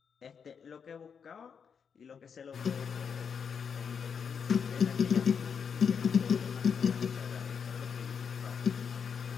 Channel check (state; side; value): quieter; right; 6.7 dB